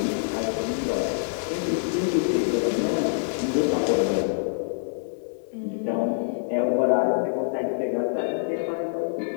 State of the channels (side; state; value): right; silent; digital silence